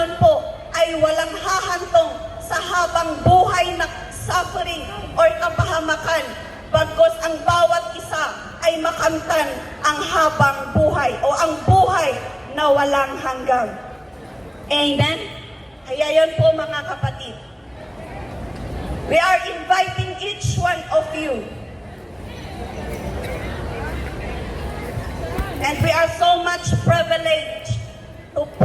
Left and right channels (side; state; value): both; identical; correlation 1.00